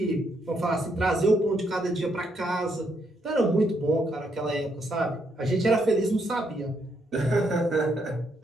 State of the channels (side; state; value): both; normal; correlation 0.75